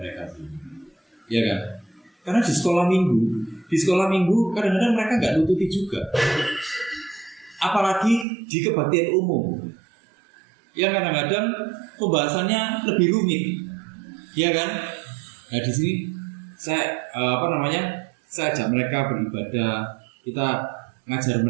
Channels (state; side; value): drops out; left; at 8.2 s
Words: sih? Ya kan? Karena di sekolah minggu kadang-kadang mereka nggak nututi juga. Apalagi di kebaktian umum, yang kadang-kadang pembahasannya lebih rumit, ya kan? Nah di sini saya saya ajak mereka beribadah, kita ngajar